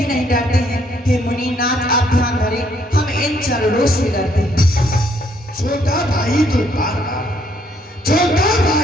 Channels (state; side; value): normal; both; correlation 0.68